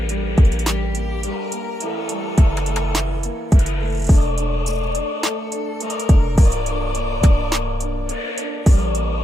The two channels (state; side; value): normal; both; correlation 0.86